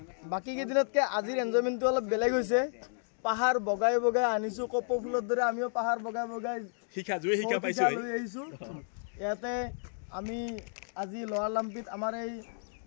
বাকী কেইদিনতকৈ আজিৰ এনজয়মেণ্টটো অলপ বেলেগ হৈছে পাহাৰ বগাই বগাই আনিছোঁ কপৌ ফুলৰ দৰে আমিও পাহাৰ বগাই বগাই শিক্ষা লৈ আহিছোঁ ইয়াতে আমি আজি লোৱাৰ লাম্পিত আমাৰ এই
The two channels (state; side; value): silent; right; digital silence